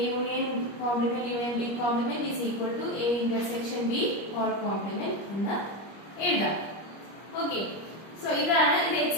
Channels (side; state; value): right; late; 25 ms